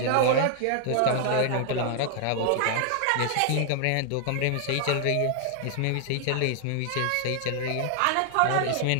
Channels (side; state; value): both; different; correlation 0.00